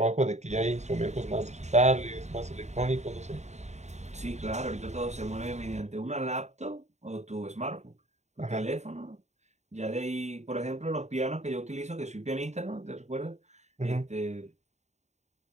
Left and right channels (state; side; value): late; left; 0.33 ms